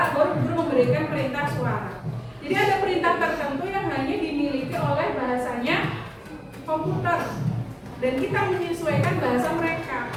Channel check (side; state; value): both; identical; correlation 1.00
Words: baru bu guru memberikan perintah suara. Jadi ada perintah tertentu yang hanya dimiliki oleh bahasanya komputer. Dan kita menyesuaikan bahasa mereka.